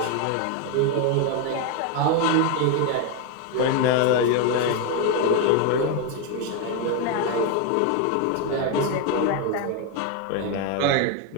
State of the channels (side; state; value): both; different; correlation 0.01